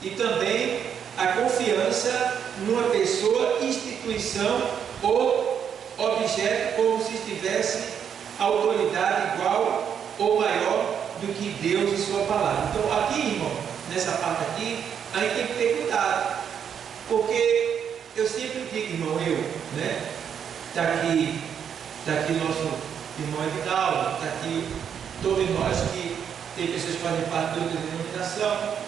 e também a confiança numa pessoa, instituição ou objeto, como se tivesse autoridade igual ou maior do que Deus e sua palavra. Então aqui, irmão, nessa parte aqui, a gente tem que ter cuidado, porque eu sempre digo, irmão, né? Está aqui nosso irmão Edinaldo, está aqui todos nós que tem pessoas que fazem parte de outra denominação.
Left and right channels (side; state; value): left; quieter; 8.0 dB